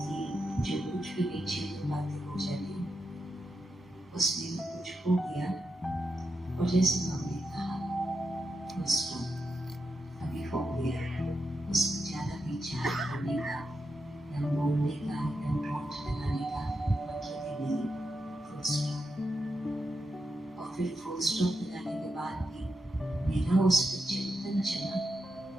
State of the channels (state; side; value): normal; both; correlation 0.86